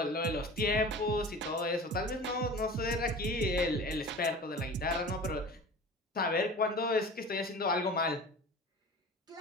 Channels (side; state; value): both; normal; correlation 0.38